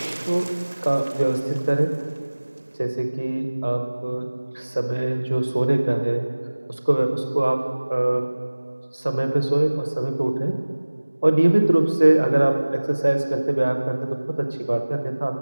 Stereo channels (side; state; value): both; inverted; correlation -1.00